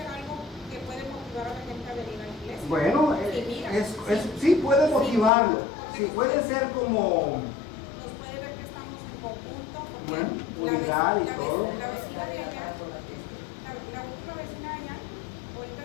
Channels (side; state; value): right; drops out; at 5.3 s